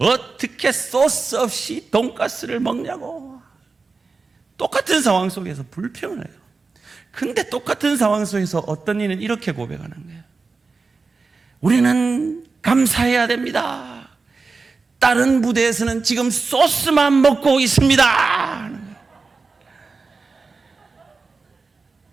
소스 없이 돈가스를 먹냐고. 똑같은 상황 속에서 불평을 해요. 근데 똑같은 상황 속에서 어떤 이는 이렇게 고백하는 거예요. 우리는 감사해야 됩니다. 다른 부대에서는 지금 소스만 먹고 있습니다.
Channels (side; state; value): left; quieter; 4.2 dB